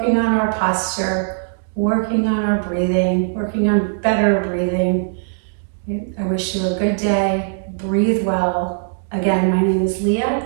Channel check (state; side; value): silent; left; digital silence